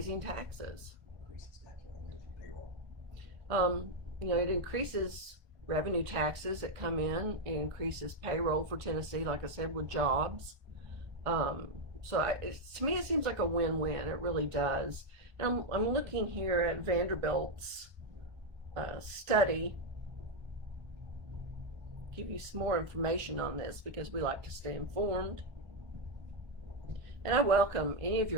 taxes. It increases revenue taxes that come in. It increases payroll for Tennessee, like I said, with jobs. To me, it seems like a win-win. It really does. And I'm looking here at Vanderbilt's study. Give you some more information on this because we like to stay informed. And I welcome any of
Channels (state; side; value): late; left; 1.3 ms